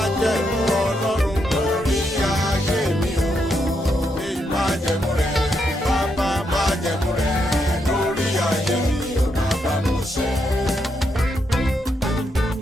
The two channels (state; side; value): normal; both; correlation 0.80